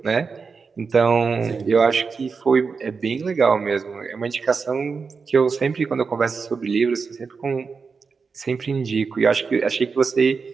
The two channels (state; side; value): quieter; left; 5.1 dB